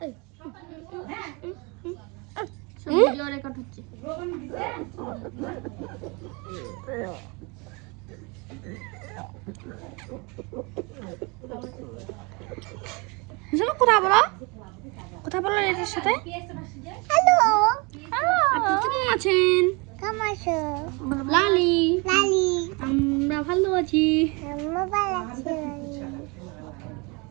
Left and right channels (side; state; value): left; quieter; 29.2 dB